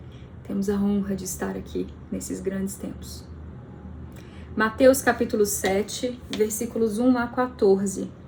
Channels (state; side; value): identical; both; correlation 1.00